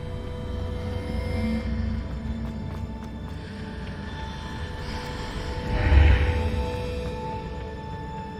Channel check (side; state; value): both; identical; correlation 1.00